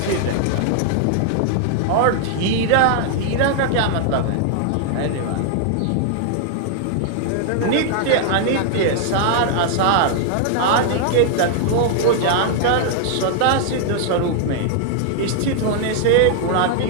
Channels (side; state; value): both; different; correlation 0.00